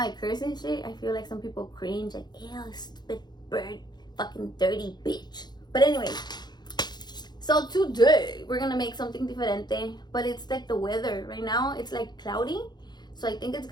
curse and shit. I feel like some people cringe, like, ew, stupid bird. Fucking dirty bitch. But anyway, so today we're gonna make something diferente, but it's like the weather right now, it's like cloudy, so I think it's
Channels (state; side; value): late; right; 0.21 ms